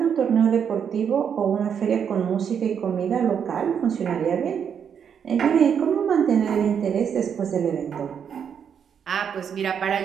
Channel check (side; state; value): left; quieter; 7.6 dB